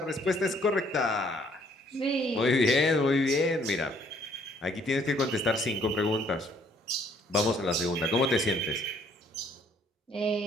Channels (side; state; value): both; normal; correlation 0.63